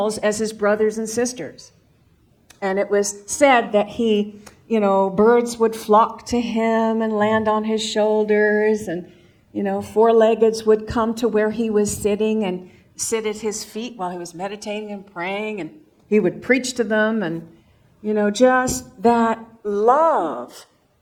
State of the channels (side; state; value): both; identical; correlation 1.00